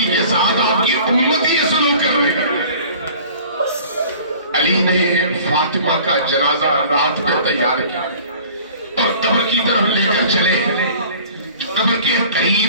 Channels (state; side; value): inverted; both; correlation -0.47